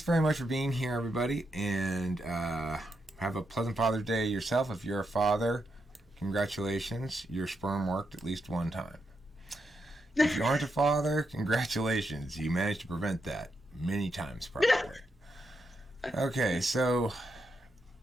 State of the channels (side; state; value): both; normal; correlation 0.83